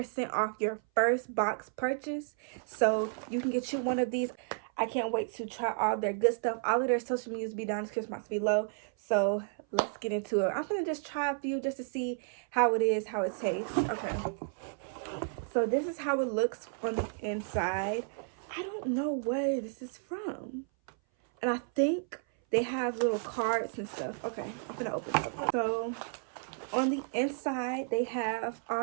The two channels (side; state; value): left; silent; 56 dB below the other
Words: off your first box purchase. So you can get you one of these. I can't wait to try all their good stuff. All of their social medias be down in the description box below. So let's get into it. I'm gonna just try a few just to see how it is, how it tastes. Okay. So this is how it looks on the inside. I don't know where this is from. And I think they have little cards and stuff. Okay, I'm gonna open it up. So on the inside, they have